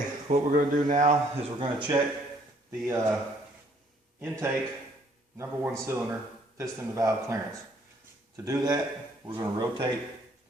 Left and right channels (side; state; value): both; normal; correlation 0.63